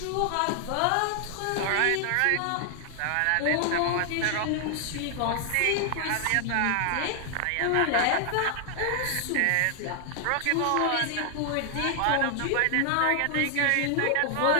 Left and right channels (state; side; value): different; both; correlation 0.00